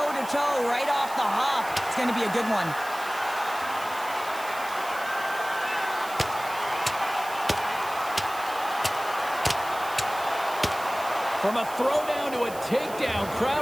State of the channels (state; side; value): noise; right; hiss, 15 dB below the sound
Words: right off the hop. It's going to be a good one. From a throwdown to a takedown,